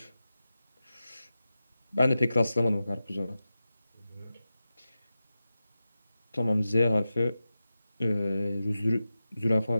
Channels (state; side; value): inverted; both; correlation -0.93